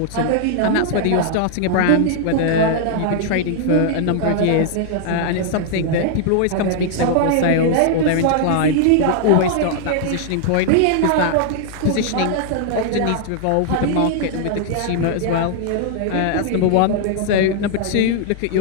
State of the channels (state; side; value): different; both; correlation -0.01